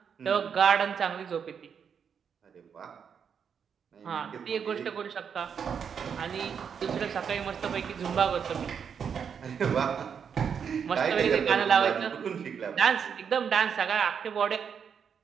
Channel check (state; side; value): quieter; left; 7.1 dB